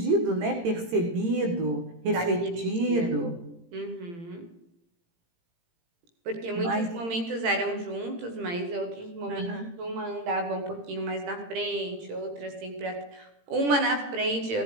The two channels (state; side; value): late; left; 18 ms